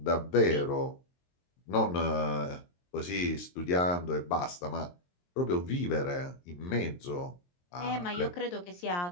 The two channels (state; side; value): late; right; 23 ms